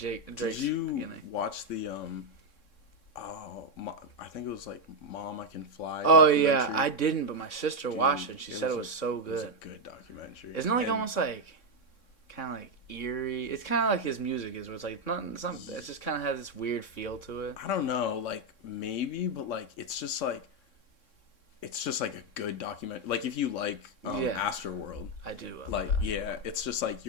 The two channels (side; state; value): right; late; 3.6 ms